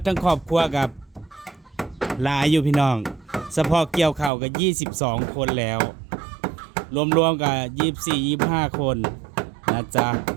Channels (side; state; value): left; drops out; at 4.3 s